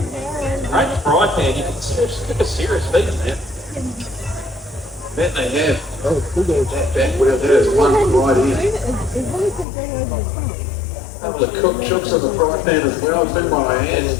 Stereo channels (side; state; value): right; drops out; at 9.7 s